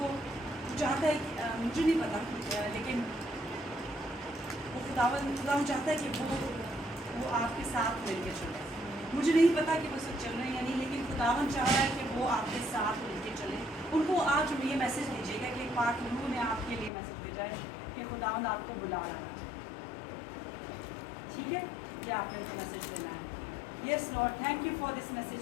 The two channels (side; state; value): right; drops out; at 16.9 s